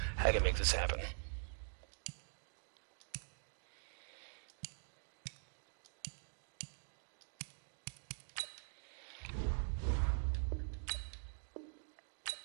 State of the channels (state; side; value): silent; left; digital silence